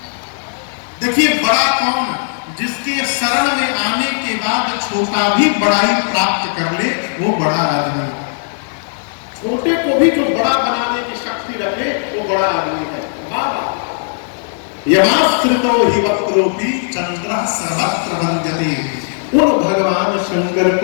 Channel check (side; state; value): right; silent; digital silence